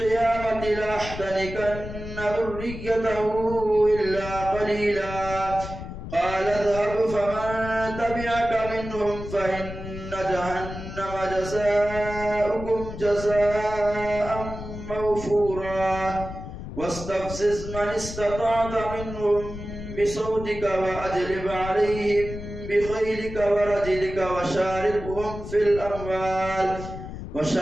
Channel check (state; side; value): noise; left; rumble, 10 dB below the sound